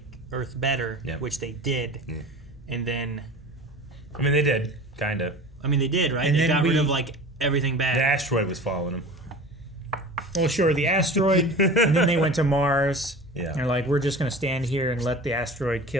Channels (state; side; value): normal; both; correlation 0.37